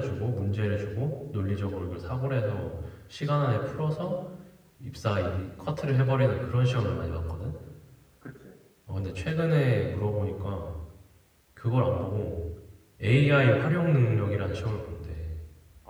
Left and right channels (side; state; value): both; identical; correlation 1.00